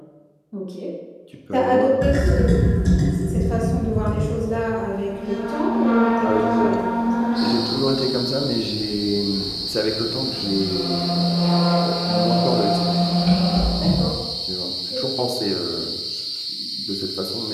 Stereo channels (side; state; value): both; identical; correlation 1.00